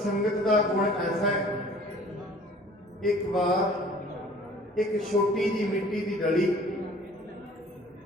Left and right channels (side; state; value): both; normal; correlation 0.50